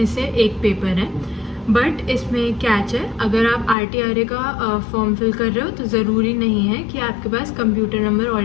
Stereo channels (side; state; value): right; drops out; at 3.8 s